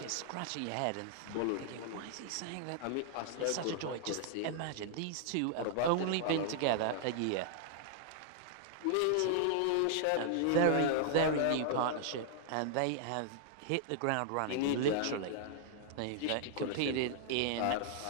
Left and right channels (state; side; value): different; both; correlation -0.01